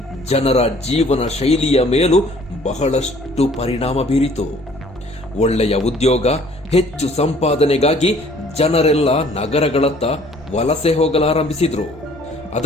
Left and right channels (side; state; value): left; noise; hum, 24 dB below the sound